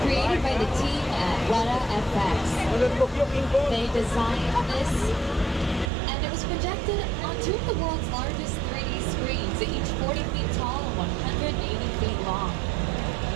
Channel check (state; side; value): drops out; left; at 5.9 s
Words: created by the team at Weta FX. They designed this, and it was projected on two of the world's largest 3D screens, each 40 feet tall and 180 feet long.